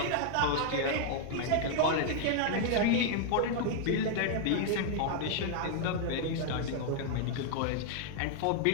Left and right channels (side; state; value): both; different; correlation 0.00